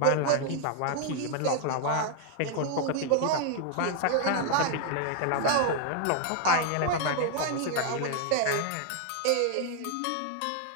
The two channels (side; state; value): both; different; correlation 0.00